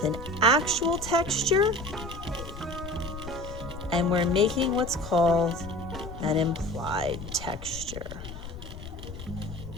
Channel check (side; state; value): left; noise; rumble, 11 dB below the sound